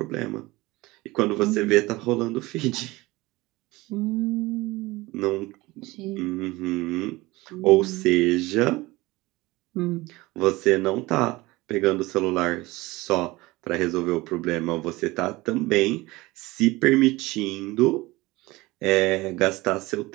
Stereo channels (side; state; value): left; quieter; 20.8 dB